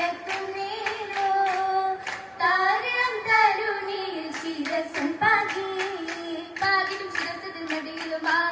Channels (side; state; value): both; identical; correlation 1.00